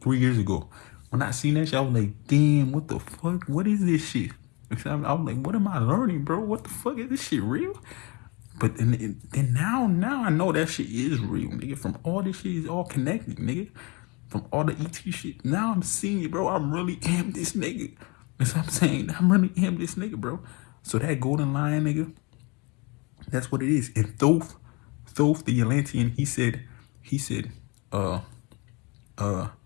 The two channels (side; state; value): right; quieter; 28.8 dB